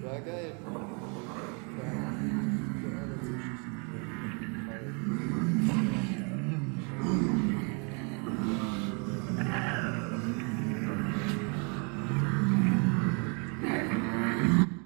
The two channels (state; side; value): quieter; left; 35.8 dB